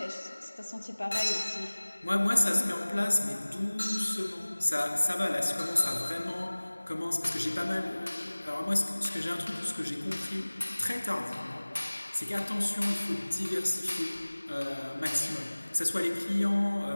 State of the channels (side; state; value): both; inverted; correlation -1.00